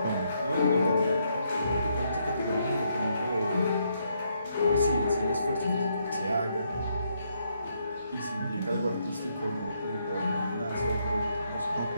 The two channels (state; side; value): inverted; both; correlation -0.75